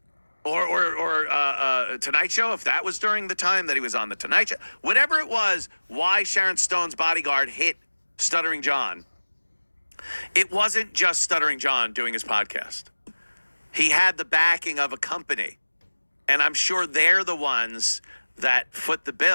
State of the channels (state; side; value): inverted; both; correlation -1.00